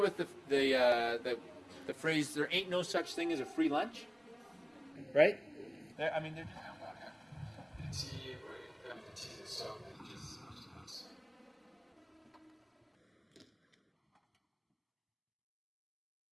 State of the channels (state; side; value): identical; both; correlation 1.00